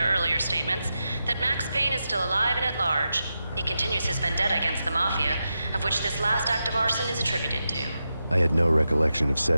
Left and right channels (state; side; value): inverted; both; correlation -0.89